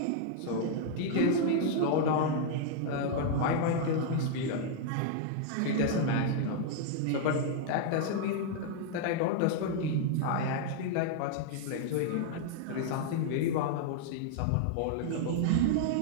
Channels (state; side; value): different; both; correlation -0.01